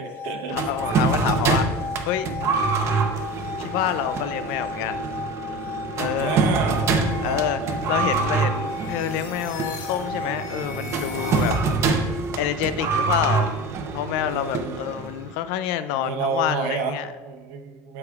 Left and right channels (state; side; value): normal; both; correlation 0.30